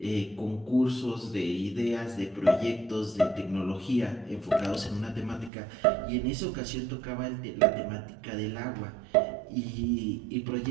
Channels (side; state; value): left; drops out; at 5.5 s